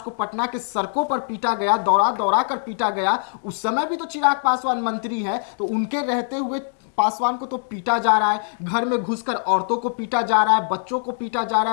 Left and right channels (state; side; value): silent; right; 64 dB below the other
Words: को पटना के सड़कों पर पीटा गया, दौड़ा दौड़ा कर पीटा गया। उस समय भी तो चिराग पासवान मंत्री हैं, तो उनके रहते हुए पासवान को तो पीटा जा रहा है, घर में घुसकर औरतों को पीटा जा रहा है, बच्चों को पीटा जा रहा